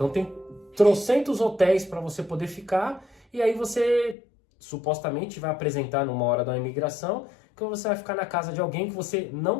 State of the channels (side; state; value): right; drops out; at 4.2 s